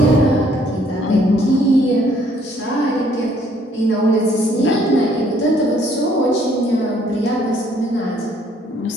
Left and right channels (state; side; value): normal; both; correlation 0.64